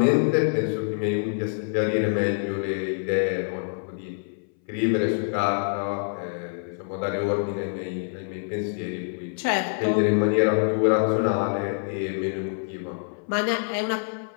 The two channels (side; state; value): right; silent; 59 dB below the other